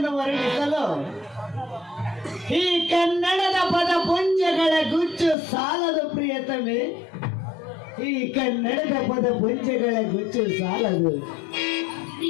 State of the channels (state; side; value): drops out; right; at 5.4 s